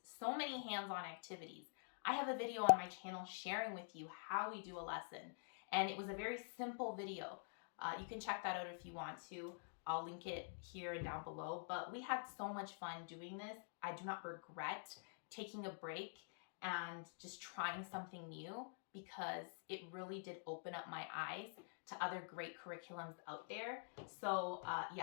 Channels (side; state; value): right; silent; digital silence